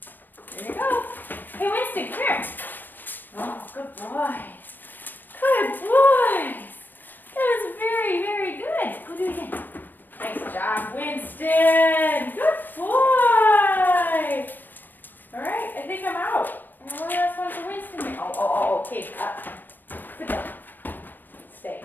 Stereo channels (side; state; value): right; late; 0.089 ms